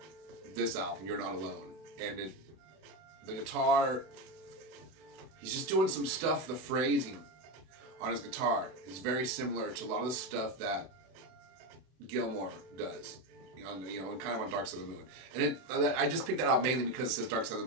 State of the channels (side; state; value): left; late; 32 ms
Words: this album, You're Not Alone. And the guitar, he's just doing some stuff, the phrasing on his guitar is very similar to a lot of the stuff that Gilmour does, you know, and kind of on Dark Side of the Moon. And I just picked that out mainly because it says Dark Side of